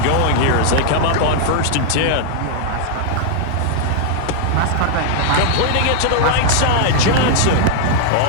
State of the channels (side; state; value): both; different; correlation 0.00